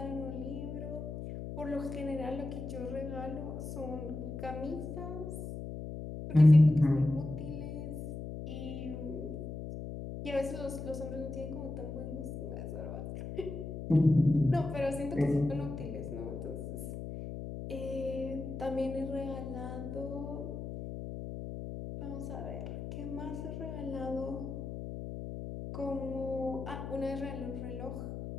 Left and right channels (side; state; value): left; noise; hum, 7 dB below the sound